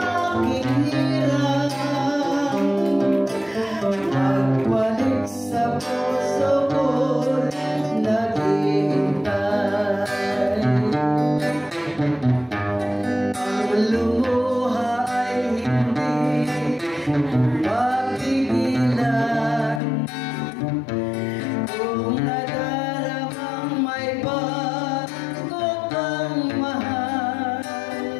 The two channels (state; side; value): drops out; right; at 19.8 s